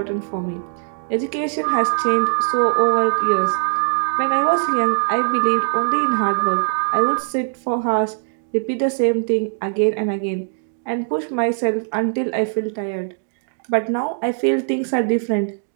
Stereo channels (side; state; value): left; silent; digital silence